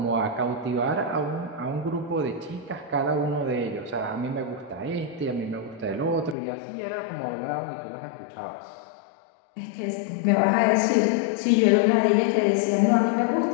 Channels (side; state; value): right; drops out; at 6.4 s